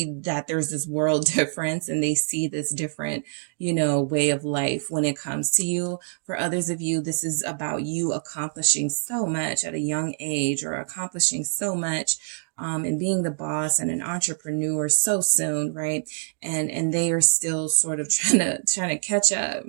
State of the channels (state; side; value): silent; left; digital silence